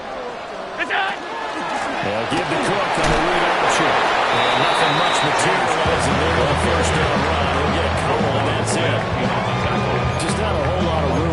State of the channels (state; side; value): identical; both; correlation 1.00